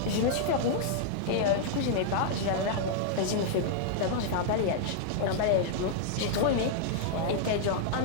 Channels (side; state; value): both; different; correlation -0.01